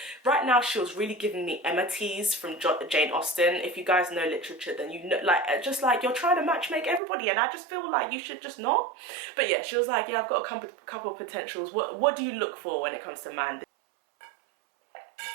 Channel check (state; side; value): drops out; left; at 7.0 s